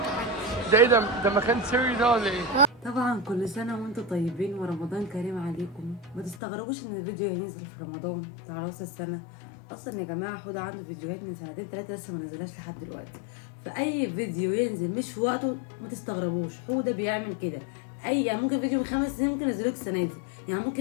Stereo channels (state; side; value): drops out; right; at 6.4 s